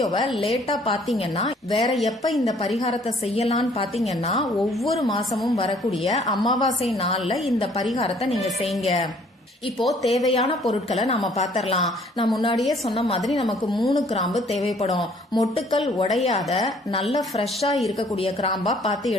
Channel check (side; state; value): both; normal; correlation 0.59